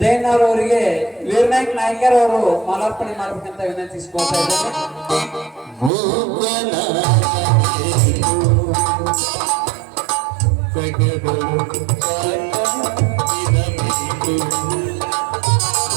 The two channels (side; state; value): left; drops out; at 5.9 s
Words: ಜೈನರ್ ಅವರಿಗೆ ವೀರನಾಯಕ್ ನಾಯ್ಕರ್ ಅವರು ಮಾಲಾರ್ಪಣೆ ಮಾಡಬೇಕಂತ ವಿನಂತಿಸಿಕೊಳ್ತಾ ಇದ್ದಾರೆ.